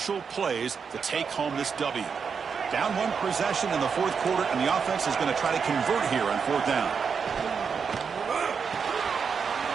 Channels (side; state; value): left; quieter; 6.1 dB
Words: plays to take home this W? Down one possession in the fourth quarter, and the offense is going to try to convert here on fourth down.